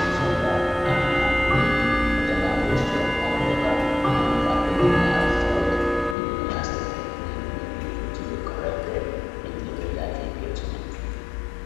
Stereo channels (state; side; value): drops out; right; at 6.2 s